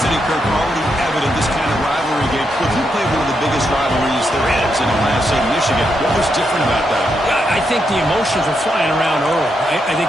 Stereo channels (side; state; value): both; normal; correlation 0.81